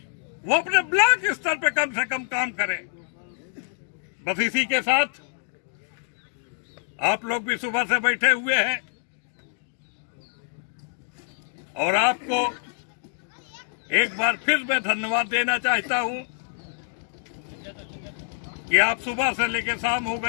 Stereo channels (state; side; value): silent; right; digital silence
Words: वो अपने ब्लॉक स्तर पे कम से कम काम करें। बस इसी के साथ आप लोग भी सुबह से बैठे हुए हैं और आपको एक बार फिर मैं धन्यवाद देना चाहता हूं कि आप सुबह से लेकर शाम हो